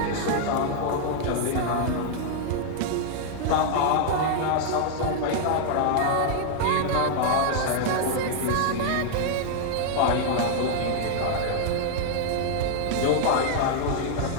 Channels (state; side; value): different; both; correlation 0.00